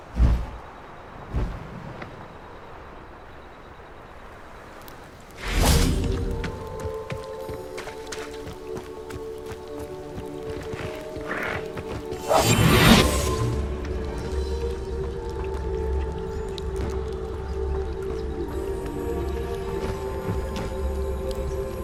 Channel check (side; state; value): both; identical; correlation 1.00